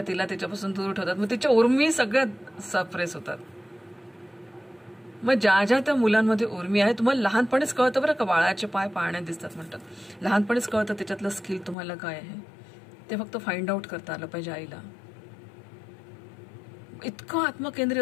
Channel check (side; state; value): right; drops out; at 11.8 s